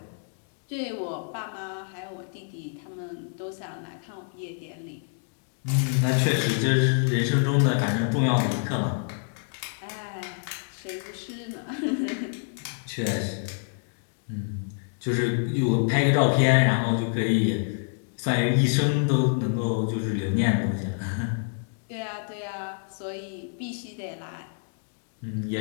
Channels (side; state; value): right; silent; digital silence